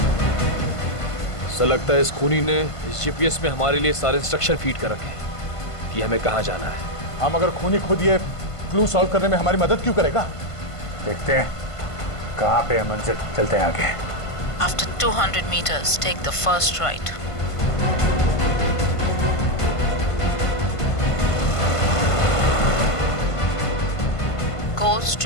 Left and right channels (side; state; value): right; late; 1.5 ms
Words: Sir, लगता है इस खूनी ने इस जीपीएस में हमारे लिए सारे इंस्ट्रक्शन फीड कर रखे हैं कि हमें कहाँ जाना है। हम अगर खूनी खुद ये क्लू सॉल्व करने में हमारी मदद क्यों करेगा? देखते हैं कहाँ पे है मंजिल। चलते हैं आगे। After 200 meters, take the first right. Go